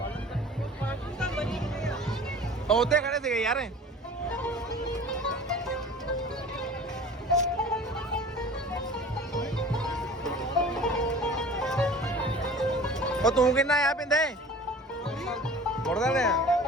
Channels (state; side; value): normal; both; correlation 0.42